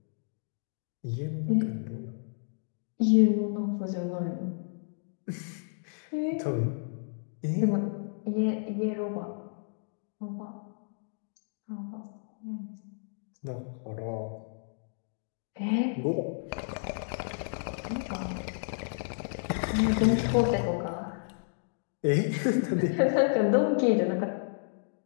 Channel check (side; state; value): right; silent; digital silence